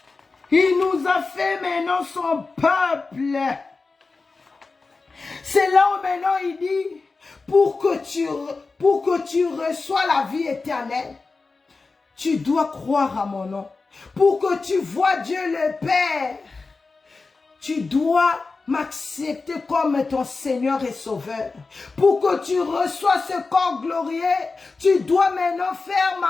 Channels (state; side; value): quieter; right; 4.0 dB